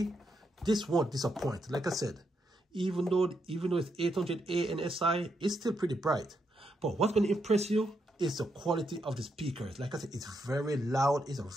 this won't disappoint. Like I said, even though it's 800A and SI, it's still pretty bright. But what's going to impress you is the quality of the speakers. Like I said, it's very loud. It's a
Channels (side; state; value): both; normal; correlation 0.80